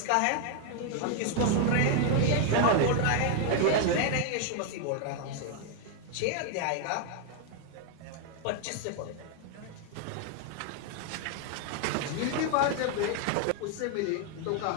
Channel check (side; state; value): both; different; correlation 0.00